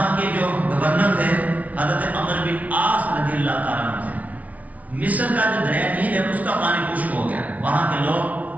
کے جو گورنر تھے حضرت عمر بن عاص رضی اللہ تعالیٰ عنہ تھے. مصر کا جو دریا نیل ہے اس کا پانی خشک ہو گیا. وہاں کے لوگ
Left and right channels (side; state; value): left; late; 0.070 ms